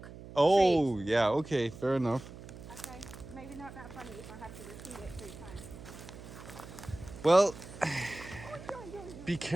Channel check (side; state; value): right; noise; hum, 15 dB below the sound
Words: Oh, trees. yeah, okay, fair enough. Okay. Maybe not that funny if I have to repeat it 3 times. Well, be